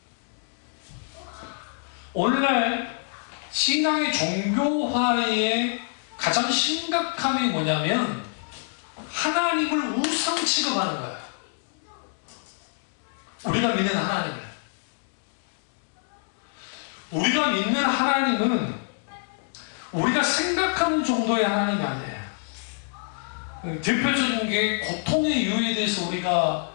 오늘날 신앙의 종교화의 가장 심각함이 뭐냐면 하나님을 우상 취급하는 거예요. 우리가 믿는 하나님을. 우리가 믿는 하나님은 우리가 생각하는 정도의 하나님이 아니에요. 대표적인 게 고통의 이유에 대해서 우리가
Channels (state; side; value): silent; right; 58 dB below the other